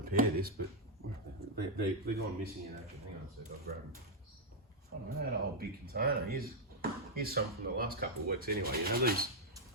this, but they're gone missing in action. Hang on a sec, I'll grab them. I don't know, that old big container. Here's some from the last couple of weeks anyway. These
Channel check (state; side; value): normal; both; correlation -0.02